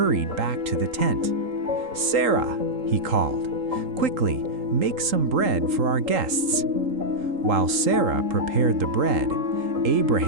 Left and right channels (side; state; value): left; late; 3.8 ms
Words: back to the tent. "Sarah," he called, "quickly, make some bread for our guests." While Sarah prepared the bread,